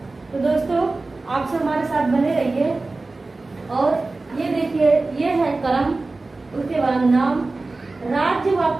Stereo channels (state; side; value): quieter; left; 3.4 dB